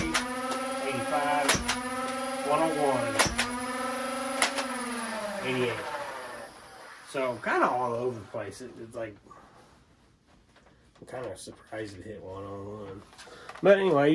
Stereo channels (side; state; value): both; identical; correlation 1.00